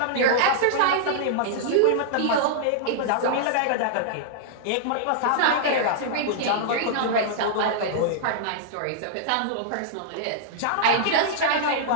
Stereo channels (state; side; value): different; both; correlation -0.02